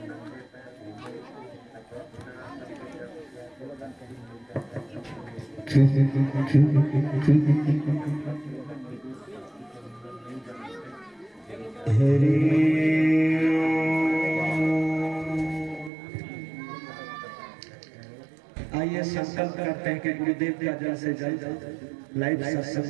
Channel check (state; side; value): drops out; left; at 15.9 s